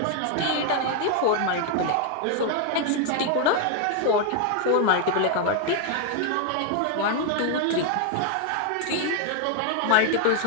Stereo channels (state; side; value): different; both; correlation 0.00